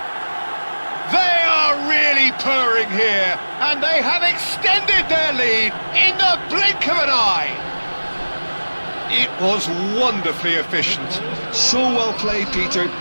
They are really purring here, and they have extended their lead in the blink of an eye. It was wonderfully efficient. So well played, Peter.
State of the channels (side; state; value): both; inverted; correlation -1.00